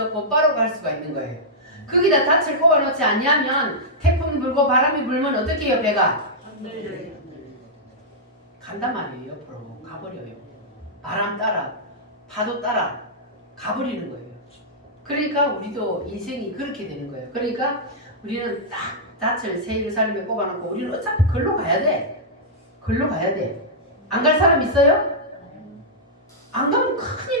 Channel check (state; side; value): normal; both; correlation -0.10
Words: 곧바로 갈 수가 있는 거예요. 거기다 닻을 꼽아놓지 않냐면 태풍 불고 바람이 불면 어떻게 해요? 배가? 간단 말이에요. 옆으로 가버려요. 바람 따라 파도 따라 가버리는 거예요. 그러니까 우리도 인생이 그렇게 되는 거예요. 그러니까 우리는 딱 닻을 새 예루살렘에 꼽아놓고 우리는 어차피 걸로 가야 돼. 걸로 가야 돼. 안 갈 사람 있어요? 안 가면